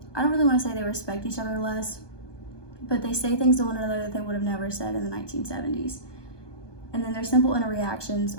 I don't really want to say they respect each other less, but they say things to one another that they would have never said in the 1970s. And then their simple interactions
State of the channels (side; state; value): right; late; 1.2 ms